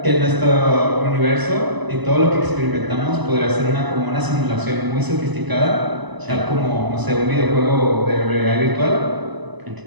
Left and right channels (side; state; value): left; late; 1.0 ms